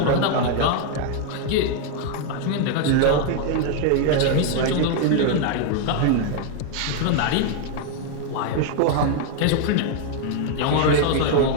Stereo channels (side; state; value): both; different; correlation 0.00